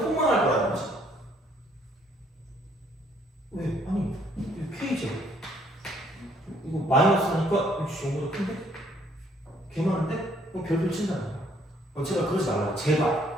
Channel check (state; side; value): normal; both; correlation 0.65